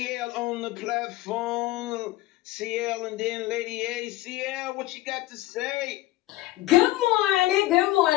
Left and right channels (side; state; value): right; quieter; 17.3 dB